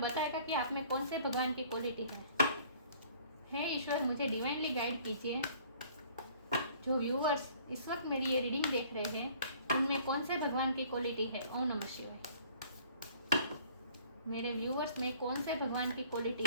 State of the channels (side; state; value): both; inverted; correlation -0.55